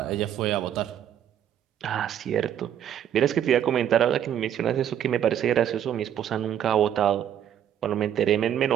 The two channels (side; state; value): left; quieter; 10.0 dB